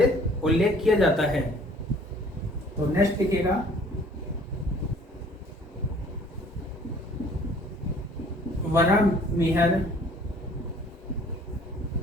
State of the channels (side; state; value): both; normal; correlation 0.54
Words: उल्लेख किया जाता है। तो नेक्स्ट लिखिएगा बरामीर